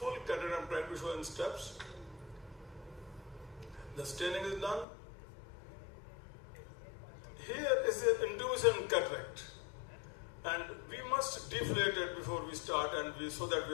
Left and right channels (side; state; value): right; drops out; at 4.9 s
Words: cataract I'm trying to show in steps. The staining is done. Here is the intuition cataract, and we must deflate it before we start, and so that